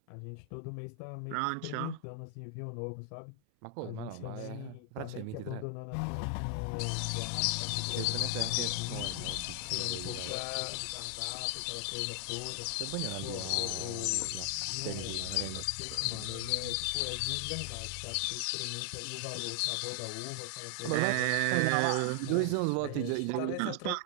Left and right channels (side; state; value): both; different; correlation 0.00